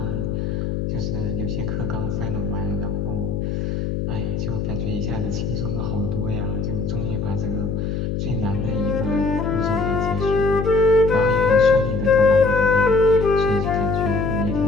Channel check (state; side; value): noise; left; hum, 2 dB below the sound